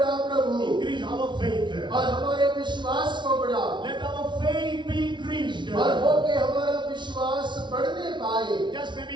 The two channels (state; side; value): late; left; 0.23 ms